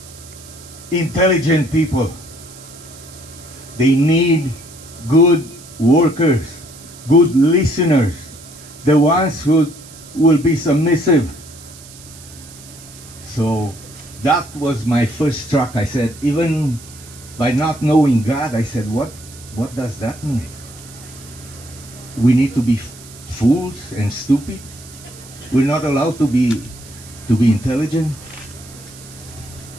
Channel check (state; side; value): noise; right; hiss, 19 dB below the sound